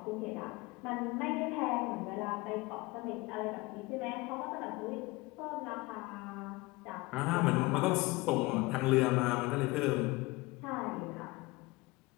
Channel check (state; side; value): quieter; right; 22.6 dB